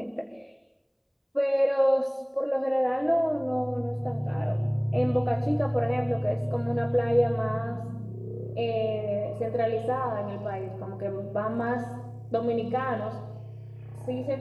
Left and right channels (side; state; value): both; identical; correlation 1.00